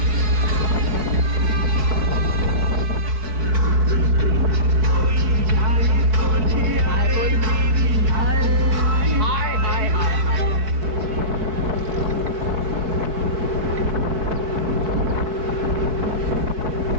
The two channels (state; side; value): late; left; 4.6 ms